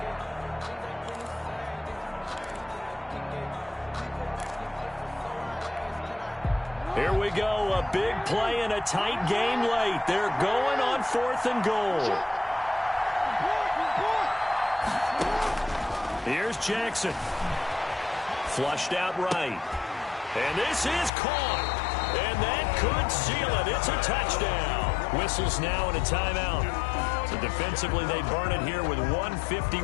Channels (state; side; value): drops out; right; at 21.1 s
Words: Here we go, a big play in a tight game late. They're going on 4th and goal. Here's Jackson. Flushed out right. And this is caught. And that could seal it. It's a touchdown. Whistles now and a timeout. So defensively, they burn it here with